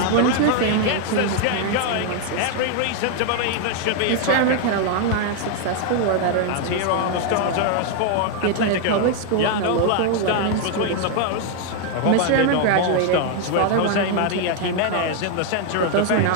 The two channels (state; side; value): different; both; correlation 0.00